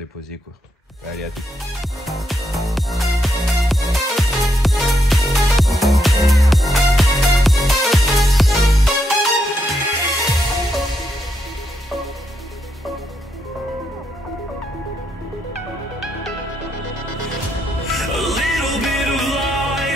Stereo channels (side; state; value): both; normal; correlation 0.80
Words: quoi. Allez, à tout.